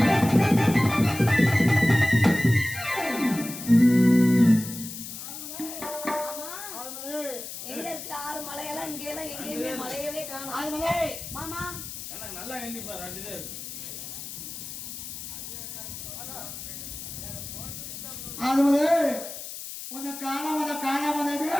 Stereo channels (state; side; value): noise; left; hiss, 10 dB below the sound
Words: எங்க இருக்கு ஆறு மலையெல்லாம் இங்க எல்லாம் எங்கேயுமே மலையவே காணோம் மாமா நல்லா எண்ணிப்பா ரெண்டு தான் இருக்கு. அதுவது உன்னை காணாம